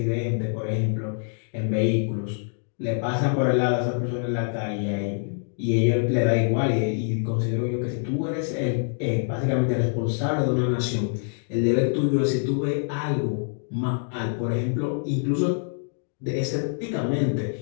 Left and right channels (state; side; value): silent; right; digital silence